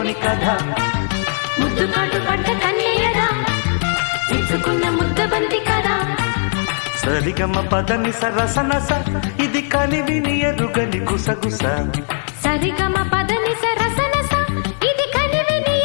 కథ ముద్దు కాటు పడ్డ కన్యయదా ఇచ్చుకున్న ముద్దబంతి కదా సరిగమ పదని సరసనస ఇది కనివిని ఎరుగని గుసగుస సరిగమ పదని సరసనస ఇది కనివిని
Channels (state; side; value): silent; right; 67 dB below the other